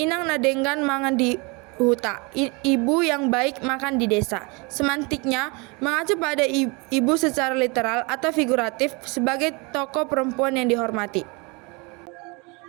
nadenggan mangan di huta, ibu yang baik makan di desa. Semantiknya mengacu pada ibu secara literal atau figuratif sebagai tokoh perempuan yang dihormati.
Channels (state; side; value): quieter; left; 28.9 dB